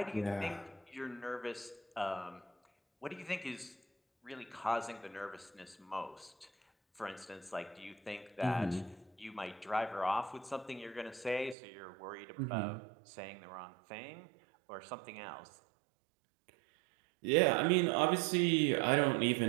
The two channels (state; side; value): drops out; left; at 11.6 s